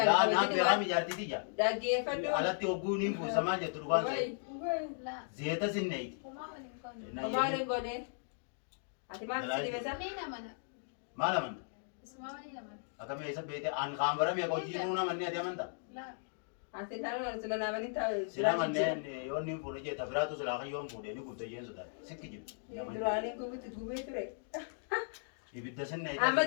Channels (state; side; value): silent; right; digital silence